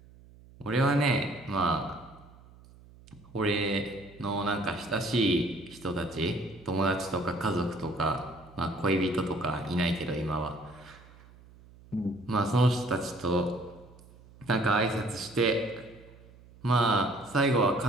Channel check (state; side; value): noise; right; hum, 23 dB below the sound